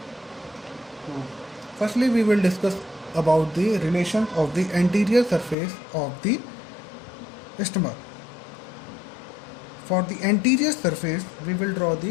Firstly, we will discuss about the relation of the anterior surface of the stomach. For the anterior surface, we will draw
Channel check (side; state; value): right; drops out; at 5.6 s